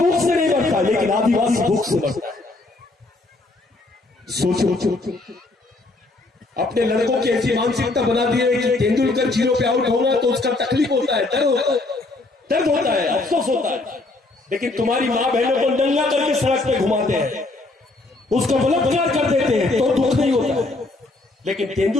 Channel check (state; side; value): quieter; right; 3.1 dB